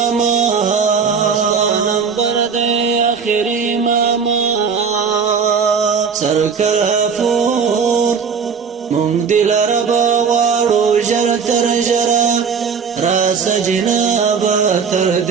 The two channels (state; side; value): quieter; left; 6.0 dB